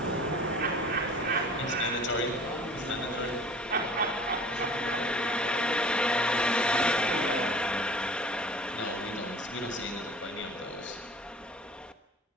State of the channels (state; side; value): normal; both; correlation 0.45